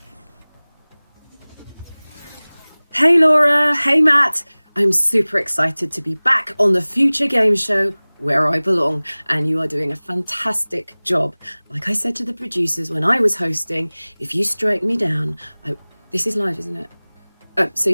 Hey Laura, hey Matt. I'm super excited to be back on the Future Game Show where I belong, and you are doing a fantastic job. Like I said to the producers when I was hosting, if you strike me down, this is live, isn't it? So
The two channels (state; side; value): inverted; both; correlation -1.00